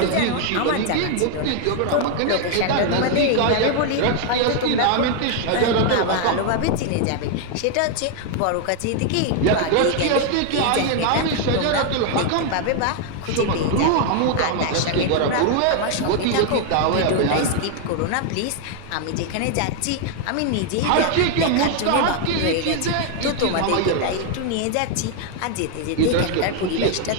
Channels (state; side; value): different; both; correlation 0.00